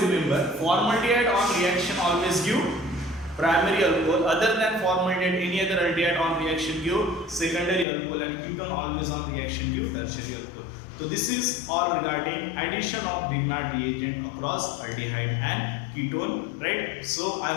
remember, formaldehyde on reaction always give primary alcohol, other than formaldehyde any other aldehyde on reaction give secondary alcohol and ketone always on reaction give tertiary alcohol. So this is all regarding addition of Grignard reagent across aldehyde and ketone, right? So I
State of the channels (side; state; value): right; drops out; at 7.9 s